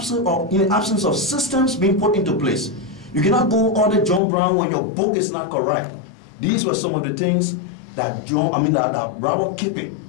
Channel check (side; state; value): right; drops out; at 4.2 s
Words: absence of systems being put into place. You cannot go audit John Brown when your book is not correct. These were some of the things that Robert Kippy